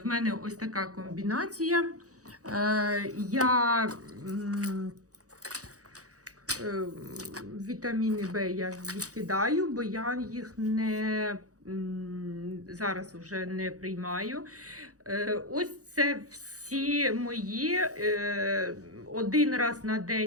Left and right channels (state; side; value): late; left; 0.66 ms